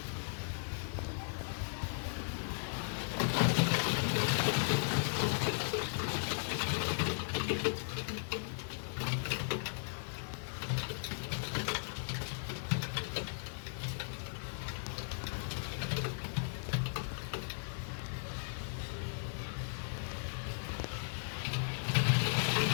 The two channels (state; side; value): silent; right; digital silence